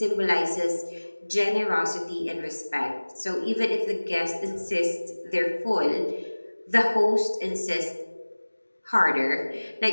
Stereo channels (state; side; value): inverted; both; correlation -1.00